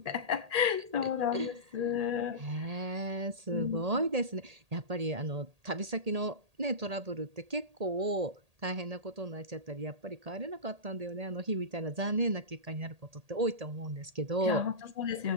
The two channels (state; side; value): late; left; 1.8 ms